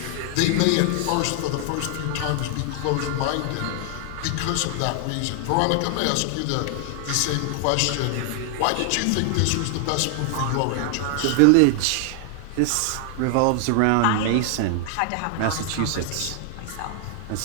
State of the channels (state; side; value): different; both; correlation 0.00